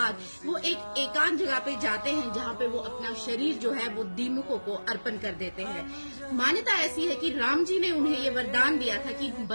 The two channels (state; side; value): inverted; both; correlation -1.00